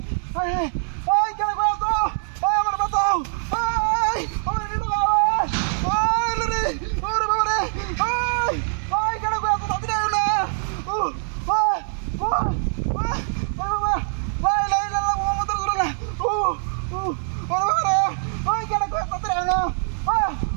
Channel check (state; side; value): silent; left; 63 dB below the other